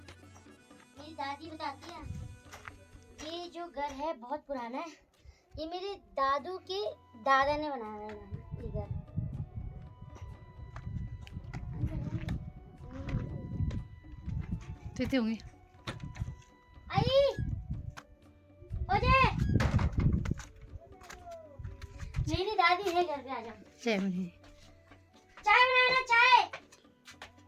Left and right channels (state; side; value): identical; both; correlation 1.00